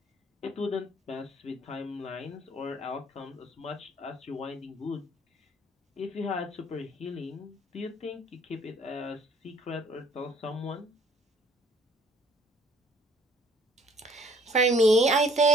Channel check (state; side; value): normal; both; correlation 0.58